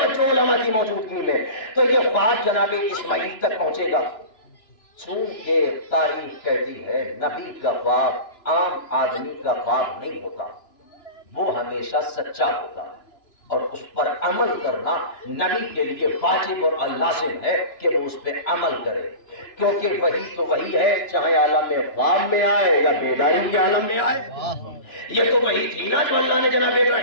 علماء کی موجودگی میں تو یہ خواب جناب اسماعیل تک پہنچے گا. چونکہ تاریخ کہتی ہے نبی کا خواب عام آدمی کا خواب نہیں ہوتا، وہ ہمیشہ سچا ہوتا ہے اور اس پر عمل کرنا نبی کے لیے واجب اور لازم ہے کہ وہ اس پہ عمل کرے. کیونکہ وہی تو وہی ہے، چاہے عالم خواب میں آئے یا بیداری کے عالم میں آئے. یہ تو وہی تھی نا جو اللہ نے جناب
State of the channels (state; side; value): late; right; 2.9 ms